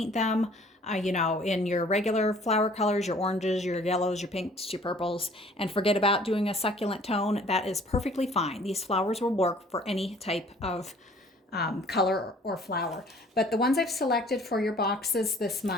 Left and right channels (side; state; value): both; normal; correlation 0.54